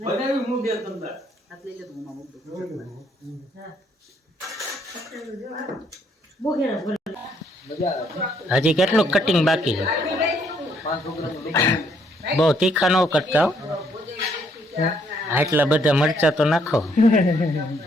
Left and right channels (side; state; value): both; normal; correlation 0.69